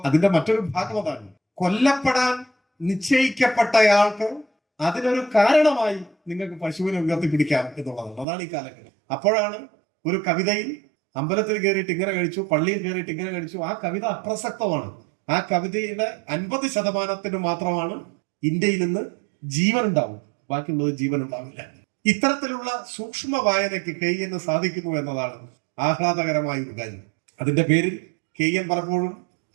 അതിന്റെ മറ്റൊരു ഭാഗം അതാണ്, കൊല്ലപ്പെടാൻ നിശ്ചയിക്കപ്പെട്ടയാൾക്ക് അതിനൊരു കാരണമായി നിങ്ങൾക്ക് പശുവിനെ ഉയർത്തിപ്പിടിക്കാം എന്നുള്ളതാണ്. അതാണ് ഈ കാലഘട്ടം. അപ്പോഴാണ് ഒരു കവിതയിൽ അമ്പലത്തിൽ കയറിയിട്ട് ഇങ്ങനെ കഴിച്ചു, പള്ളിയിൽ കയറിയിട്ട് ഇങ്ങനെ കഴിച്ചു, ആ കവിത അപ്രസക്തമാണ്. ആ കവിതയുടെ 50% മാത്രമാണ് ഇന്ത്യയിൽ നിന്ന് ജീവൻ ഉണ്ടാവും, ബാക്കിയുള്ളത് ജീവൻ ഉണ്ടാവില്ല. ഇത്തരത്തിലുള്ള സൂക്ഷ്മ വായനയ്ക്ക് KN സാധിക്കുന്നു എന്നതാണ് ആഹ്ലാദകരമായ ഒരു കാര്യം. അതിന്റെ പേരിൽ KN പലപ്പോഴും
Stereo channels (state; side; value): drops out; left; at 8.2 s